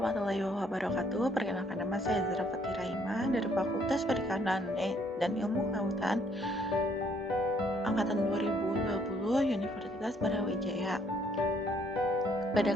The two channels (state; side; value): normal; both; correlation 0.66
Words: wabarakatuh. Perkenalkan, nama saya Zara Fatira Ima dari Fakultas Perikanan dan Ilmu Kelautan Angkatan 2020 Universitas Brawijaya. Pada